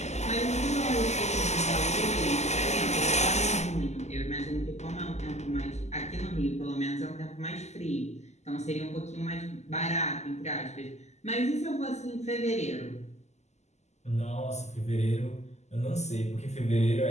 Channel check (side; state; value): right; late; 0.33 ms